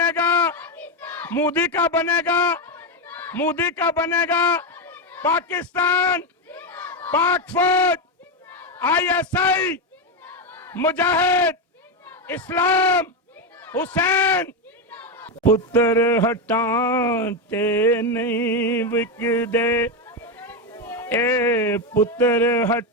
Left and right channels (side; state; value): both; normal; correlation 0.09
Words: گا، مودی کا بنے گا، مودی کا بنے گا، پاکستان، پاک فوج، آئی ایس آئی، مجاہد، اسلام، حسین۔ پتر ہٹانتے نہیں وکدے، اے پتر